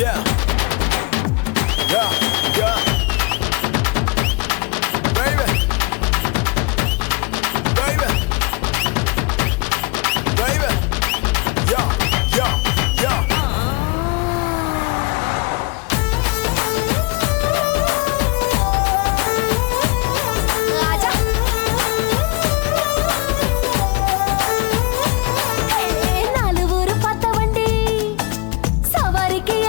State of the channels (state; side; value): quieter; right; 29.2 dB